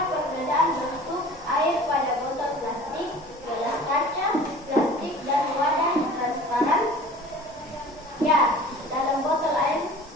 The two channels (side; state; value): both; normal; correlation 0.44